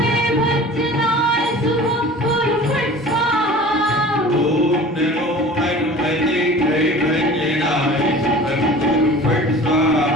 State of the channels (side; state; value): both; normal; correlation 0.41